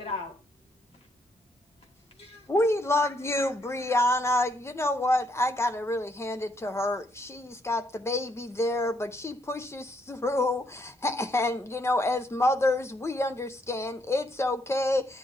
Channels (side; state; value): both; normal; correlation 0.73